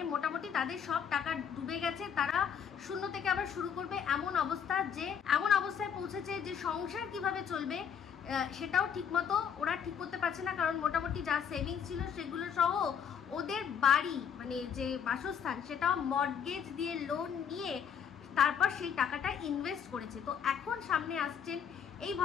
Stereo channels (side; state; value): right; quieter; 7.6 dB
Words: মোটামুটি তাদের সব টাকা ডুবে গেছে। তারা শূন্য থেকে আবার শুরু করবে এমন অবস্থায় পৌঁছেছে যে সংসার কিভাবে চলবে সেটাও ঠিকমতো ওরা ঠিক করতে পারছে না, কারণ মোটামুটি যা সেভিংস ছিল সেগুলো সহ ওদের বাড়ি, মানে যে বাসস্থান, সেটাও মর্টগেজ দিয়ে লোন নিয়ে তারপর সেই টাকাটা ইনভেস্ট করেছে। তো এখন সামনে আসছেন এই